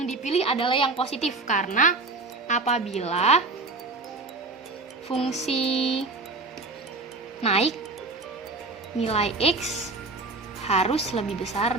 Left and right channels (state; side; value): quieter; left; 3.5 dB